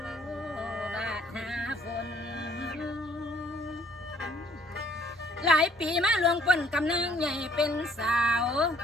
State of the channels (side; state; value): both; normal; correlation 0.62